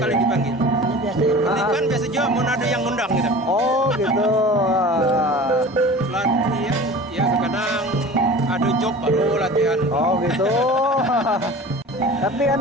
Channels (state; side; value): normal; both; correlation 0.39